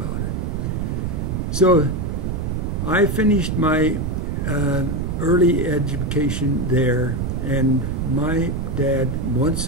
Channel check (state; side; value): noise; right; rumble, 1 dB below the sound